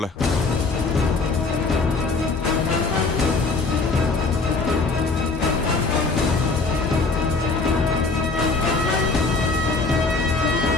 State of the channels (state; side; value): quieter; right; 3.9 dB